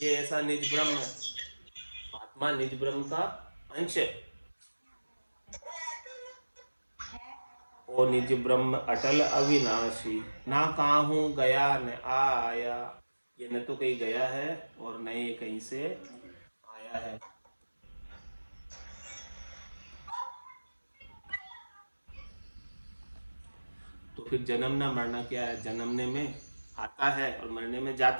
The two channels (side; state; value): both; inverted; correlation -1.00